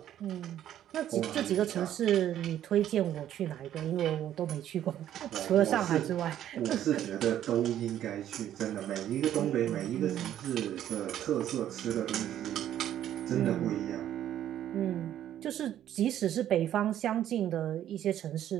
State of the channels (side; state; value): left; quieter; 11.4 dB